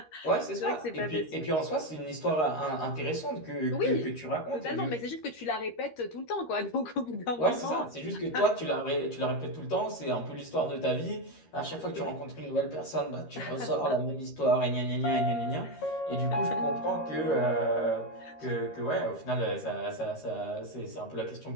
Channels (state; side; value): late; right; 13 ms